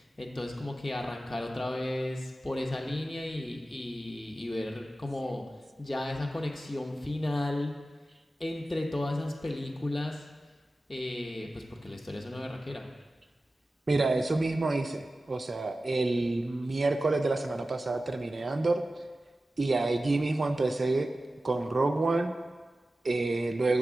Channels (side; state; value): both; normal; correlation 0.95